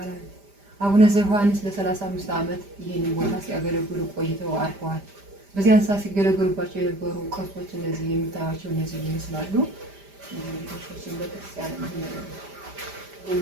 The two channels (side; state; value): left; late; 5.0 ms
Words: አቡነ ዘዮሐንስ ለ35 ዓመት ይህንን ቦታ ሲያገለግሉ ቆይተው አርፈዋል። በዚያን ሰዓት ሲገለገሉባቸው የነበሩ ቅርሶች እነዚህ የምታዩቸው እነዚህ ይመስላሉ። እንግዲህ በክርስቲያን